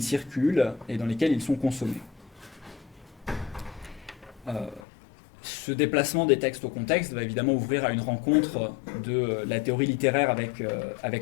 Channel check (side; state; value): right; drops out; at 4.8 s